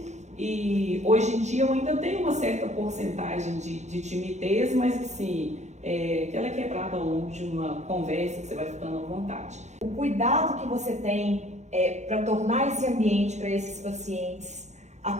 E hoje em dia eu ainda tenho uma certa porcentagem de timidez, mas assim, que ela é quebrada ao longo de uma conversa que você vai ficando à vontade. O cuidado que você tem para tornar esse ambiente para esses pacientes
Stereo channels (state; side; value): late; left; 0.33 ms